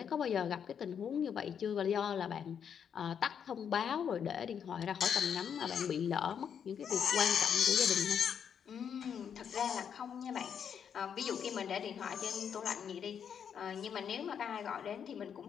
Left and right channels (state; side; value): quieter; right; 7.8 dB